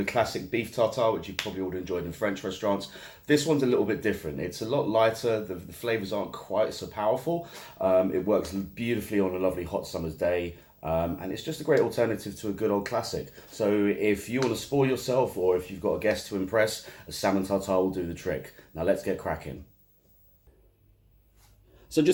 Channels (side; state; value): both; identical; correlation 1.00